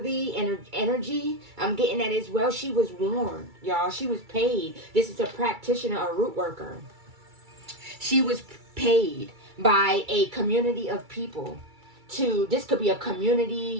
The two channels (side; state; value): left; late; 2.3 ms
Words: energy. I'm getting that as well. She was warned, y'all. She was paid. This is a practitioner, a root worker. She was paid by a community of people to, this could be a